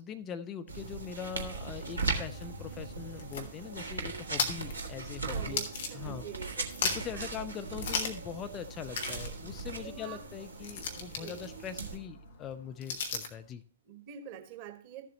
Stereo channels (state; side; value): inverted; both; correlation -0.30